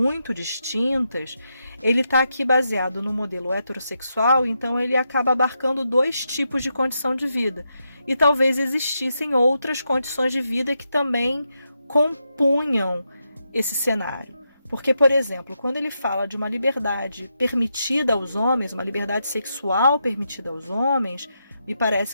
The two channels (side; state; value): both; inverted; correlation -0.84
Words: distintas, ele está aqui baseado no modelo heterossexual, então ele acaba abarcando 2 tipos de condição de vida. E talvez existissem outras condições de vida que também compunham esse cenário. Porque, por exemplo, quando ele fala de uma liberdade permitida aos homens, uma liberdade sexual permitida aos homens, me parece